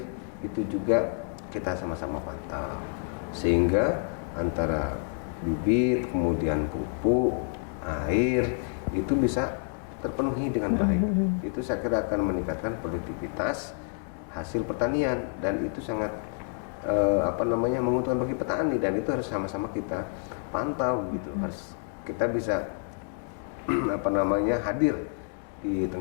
itu juga kita sama-sama pantau sehingga antara bibit kemudian pupuk air itu bisa terpenuhi dengan baik. Itu saya kira akan meningkatkan produktivitas hasil pertanian dan itu sangat menguntungkan bagi petani, dan itu harus sama-sama kita pantau gitu. Harus kita bisa hadir di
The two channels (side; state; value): right; silent; 56 dB below the other